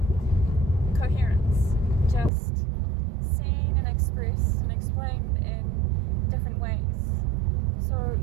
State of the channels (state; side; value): drops out; left; at 2.3 s